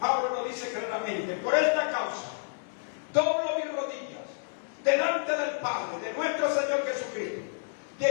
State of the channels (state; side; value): silent; right; digital silence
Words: lo dice claramente: por esta causa doblo mis rodillas delante del Padre, de nuestro Señor Jesucristo,